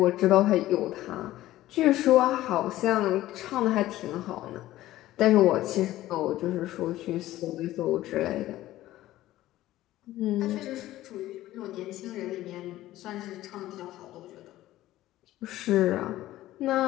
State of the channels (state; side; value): quieter; right; 15.2 dB